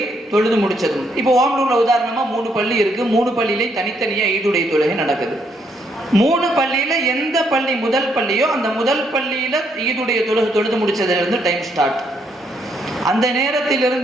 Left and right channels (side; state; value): both; normal; correlation 0.73